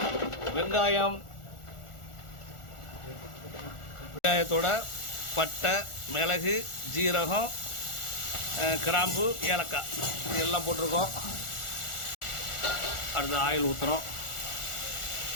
வெங்காயம், வெங்காயத்தோட பட்டை, மிளகு, ஜீரகம், கிராம்பு, ஏலக்காய் இதெல்லாம் போட்டிருக்கோம். அடுத்து ஆயில் ஊற்றுறோம்.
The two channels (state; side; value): late; right; 1.4 ms